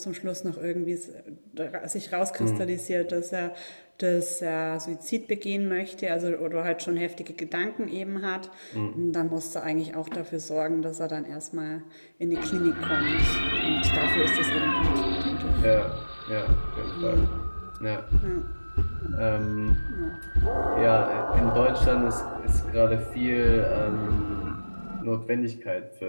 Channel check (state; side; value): inverted; both; correlation -1.00